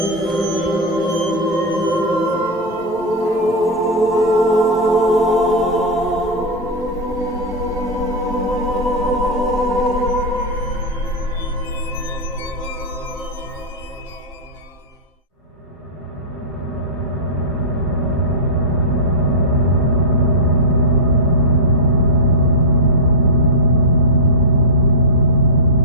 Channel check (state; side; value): normal; both; correlation -0.07